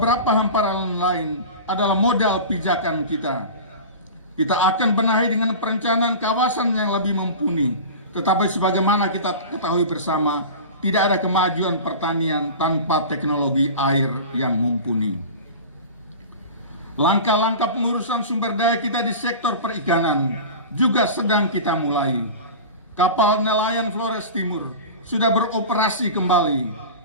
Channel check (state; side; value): inverted; both; correlation -0.33